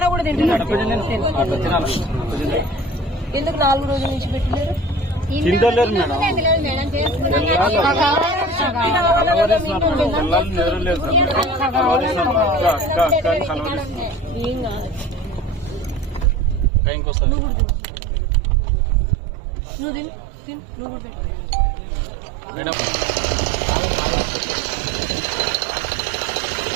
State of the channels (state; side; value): drops out; left; at 16.7 s